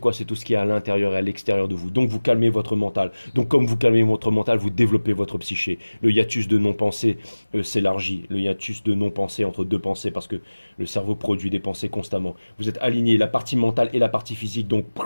C'est tout ce qui est à l'intérieur et à l'extérieur de vous. Donc vous calmez votre mental. Donc comme vous calmez votre mental, vous développez votre psyché. Le hiatus de non-pensée s'élargit. Le hiatus de non-pensée entre deux pensées, parce que le cerveau produit des pensées constamment. Vous êtes aligné, la partie mentale et la partie physique, donc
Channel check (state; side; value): inverted; both; correlation -1.00